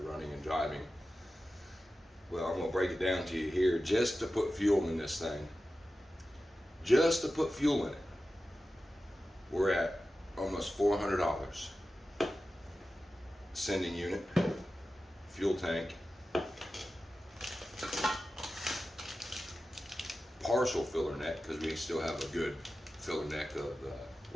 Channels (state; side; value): normal; both; correlation 0.94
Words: running and driving. Well, I'm gonna break it down to you here. Just to put fuel in this thing, just to put fuel in it, we're at almost $400. Sending unit, fuel tank, partial filler neck, because we still have a good filler neck of